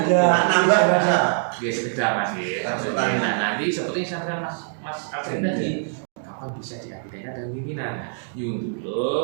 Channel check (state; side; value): silent; left; digital silence